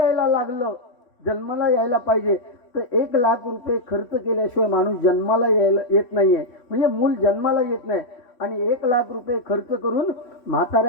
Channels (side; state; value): right; late; 3.1 ms